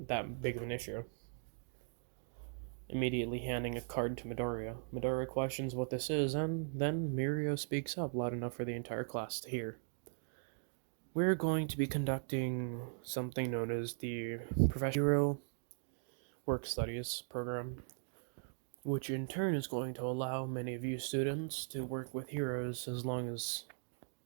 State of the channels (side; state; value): left; silent; digital silence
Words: that big of an issue. Immediately handing a card to Midoriya. Midoriya questions what this is, and then Mirio speaks up loud enough for the entire class to hear. we're going to be conducting something known as the Professional Work Studies program, which in turn is going to allow many of you students to work with heroes as long as